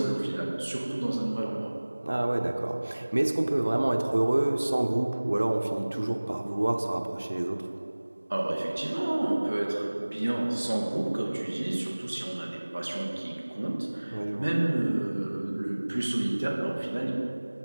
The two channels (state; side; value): inverted; both; correlation -1.00